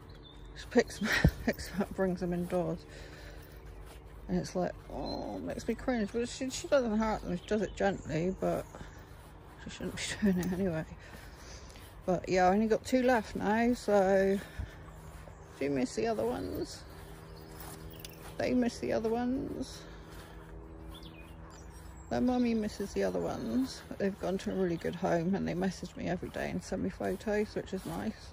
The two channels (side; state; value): both; identical; correlation 1.00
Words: She picks them up, brings them indoors. And it's like, oh, it makes me cringe. But she doesn't hurt them, she does it gently, but she shouldn't be doing it anyway. But yeah, I only got 2 left now, so do you miss the other ones? They miss the other ones. Their mummy misses the other ones, but they've gone to a really good home and they message me every day and send me photos, which is nice.